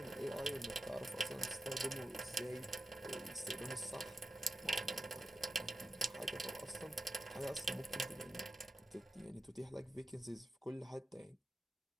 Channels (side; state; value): both; normal; correlation 0.91